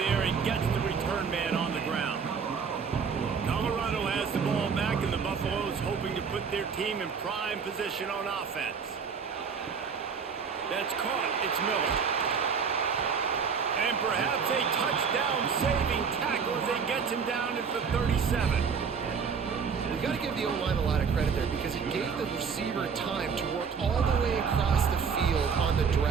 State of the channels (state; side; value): quieter; left; 6.1 dB